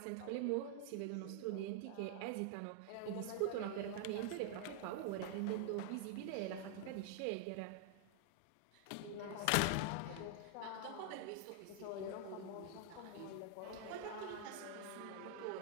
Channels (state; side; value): different; both; correlation 0.00